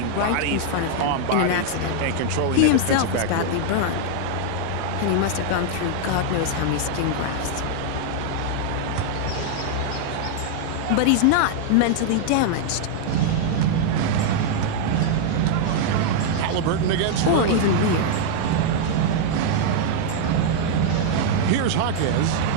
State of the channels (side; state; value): both; different; correlation -0.01